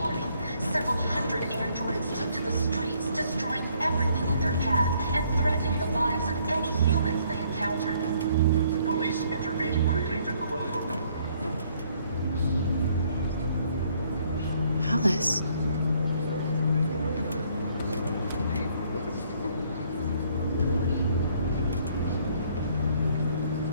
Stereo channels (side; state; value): both; inverted; correlation -0.65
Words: Several hundred androids took to the streets, destroying everything in their path and threatening the lives of any humans they encountered. The police intervened quickly to quell them. Alice.